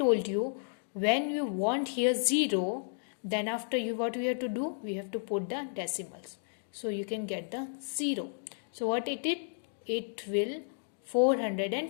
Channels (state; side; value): silent; right; digital silence